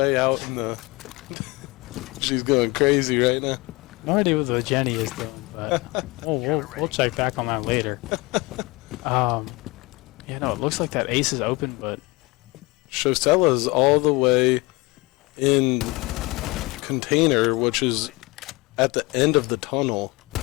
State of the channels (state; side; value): quieter; right; 24.5 dB